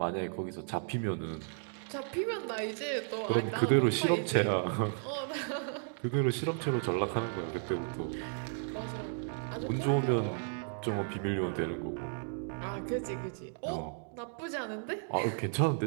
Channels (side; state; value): left; silent; digital silence